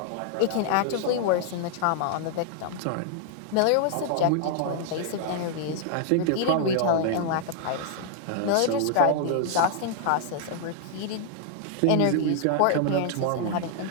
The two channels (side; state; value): both; different; correlation -0.01